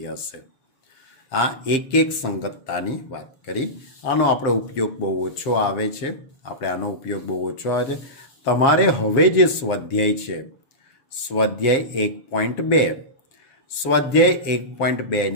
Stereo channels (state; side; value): late; right; 7.4 ms